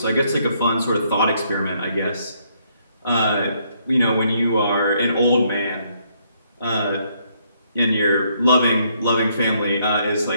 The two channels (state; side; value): inverted; both; correlation -0.71